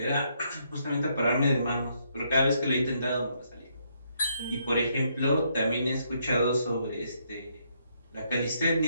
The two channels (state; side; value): inverted; both; correlation -0.74